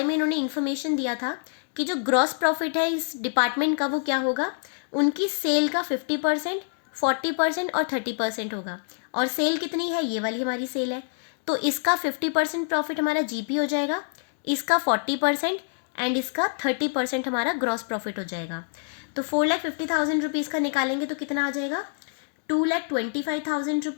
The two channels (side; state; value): right; silent; digital silence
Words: में इन्होंने इन्फॉर्मेशन दिया था कि जो ग्रॉस प्रॉफिट है इस डिपार्टमेंट का वो क्या होगा, उनकी सेल का 50%, 40% और 30% होगा। और सेल कितनी है, ये वाली हमारी सेल है, तो इसका 50% प्रॉफिट हमारा GP हो जाएगा, इसका 40% एंड इसका 30% हमारा ग्रॉस प्रॉफिट हो जाएगा। तो 4,50,000 रुपीज़ का निकालेंगे तो कितना आ जाएगा, 2,25,000